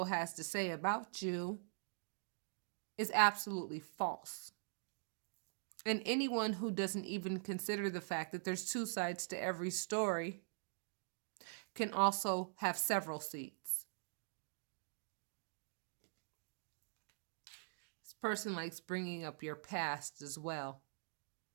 has to say about you is absolutely false. And anyone who doesn't even consider the fact that there's 2 sides to every story can also have several seats. This person likes bringing up your past as well.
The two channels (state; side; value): silent; left; digital silence